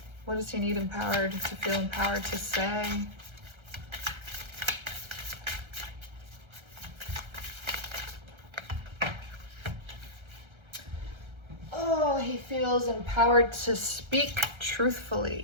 What does he need empowered to feel empowered to say? Oh, he feels empowered to speak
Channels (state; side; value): late; left; 1.3 ms